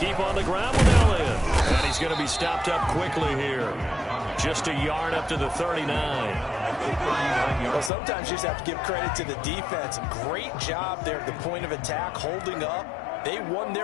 keep on the ground with Elliott. And he's going to be stopped up quickly here. Just a yard up to the 39. Well, sometimes you just have to give credit to the defense. Great job there at the point of attack, holding up. They won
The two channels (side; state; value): right; drops out; at 7.9 s